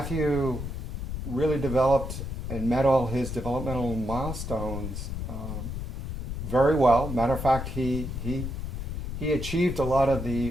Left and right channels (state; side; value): noise; left; rumble, 5 dB below the sound